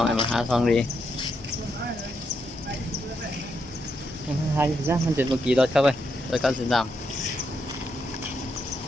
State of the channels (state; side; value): normal; both; correlation 0.80